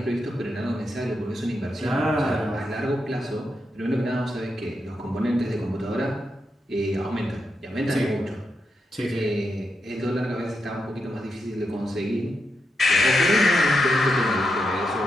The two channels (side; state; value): both; normal; correlation 0.84